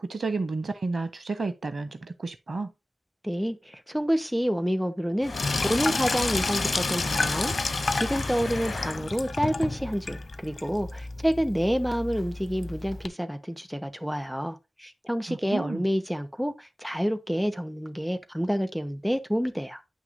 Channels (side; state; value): both; normal; correlation 0.97